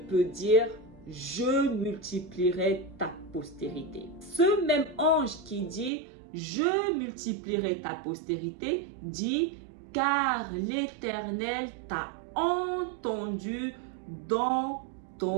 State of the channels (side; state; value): left; drops out; at 5.9 s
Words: peut dire: Je multiplierai ta postérité? Ce même ange qui dit: Je multiplierai ta postérité dit: Car l'Éternel t'a entendu dans